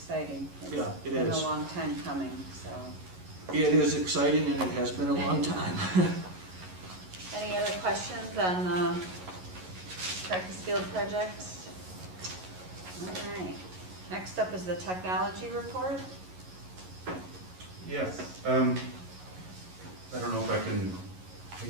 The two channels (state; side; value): late; left; 11 ms